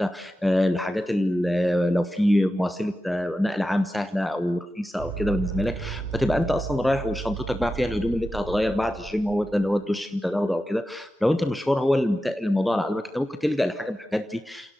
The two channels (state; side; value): normal; both; correlation 0.92